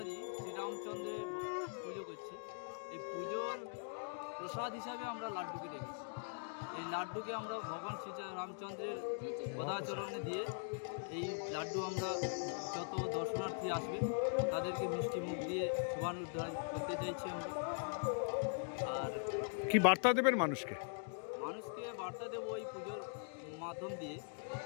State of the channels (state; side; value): silent; right; digital silence